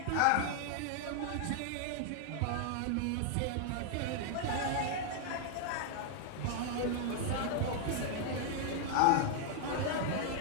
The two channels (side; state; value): both; different; correlation 0.00